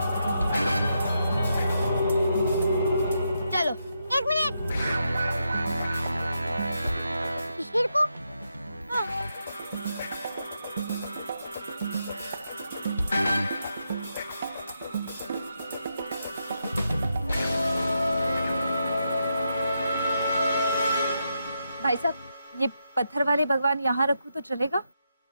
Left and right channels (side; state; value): both; inverted; correlation -0.83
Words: चलो, एक मिनट। शिशिर को? हाँ। भाई साहब, ये पत्थर वाले भगवान यहाँ रखूं तो चलेगा?